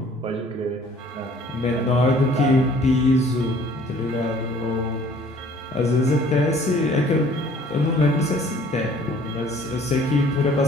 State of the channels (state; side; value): normal; both; correlation 0.55